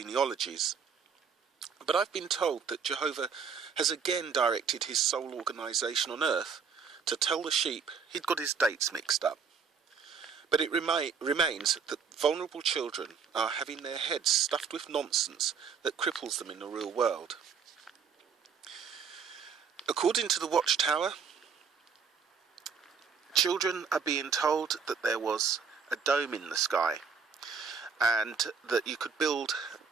But I've been told that Jehovah has again directed his sole organisation on earth to tell the sheep he'd got his dates mixed up. But it remains that vulnerable children are having their heads stuffed with nonsense that cripples them in the real world. According to the Watchtower, children are being told that there was a dome in the sky and that you could build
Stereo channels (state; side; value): quieter; left; 6.1 dB